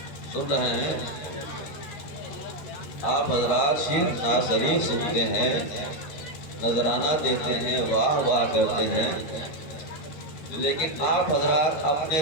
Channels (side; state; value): right; late; 13 ms